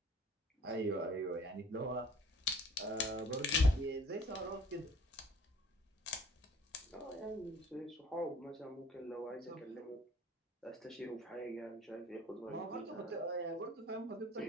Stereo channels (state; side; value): normal; both; correlation 0.52